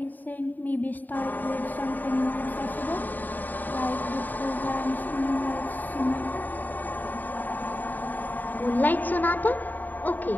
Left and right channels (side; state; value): right; late; 0.087 ms